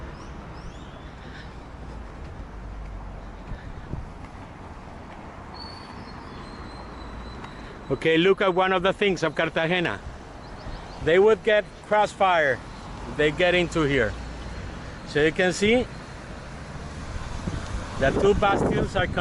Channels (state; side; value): identical; both; correlation 1.00